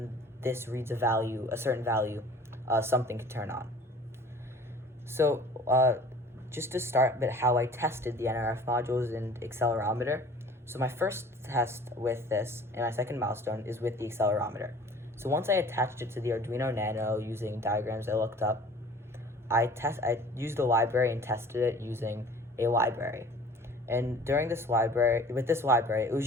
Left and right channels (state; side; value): normal; both; correlation 0.47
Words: this reads a certain value, something could turn on. So just to start with how I tested the Nrf modules and accelerometer. So my first test with this and my second milestone is with the accelerometer. So once I attached it to the Arduino Nano using diagrams I looked up, I used a library and tested it using a library. And with this library, it was